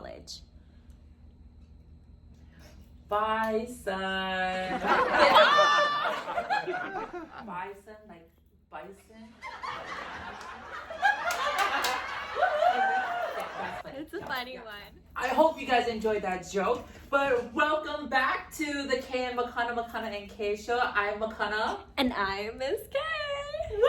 Bye, son. Bison, like bison. It's a funny one. I hope you guys enjoyed that joke. But welcome back to the K and McConaughey and K show. I'm McConaughey. And I'm Miss K.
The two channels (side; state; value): both; identical; correlation 1.00